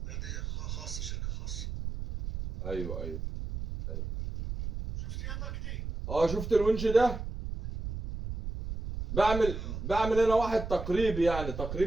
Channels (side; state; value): right; noise; rumble, 6 dB below the sound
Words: دي خاصة، شركة خاصة. ايوه ايوه. شفت يا مجدي؟ شفت الونش ده؟ بعمل انا واحد تقريبي، يعني